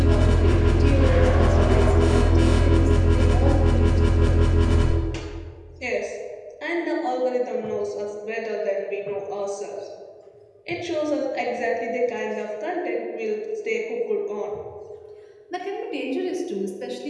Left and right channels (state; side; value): identical; both; correlation 1.00